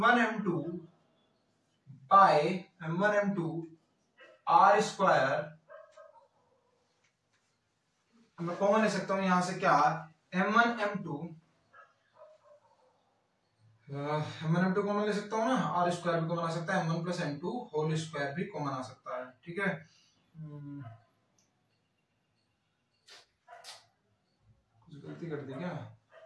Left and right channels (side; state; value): both; identical; correlation 1.00